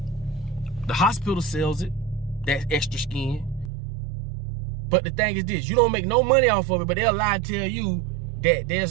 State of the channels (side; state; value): left; drops out; at 3.7 s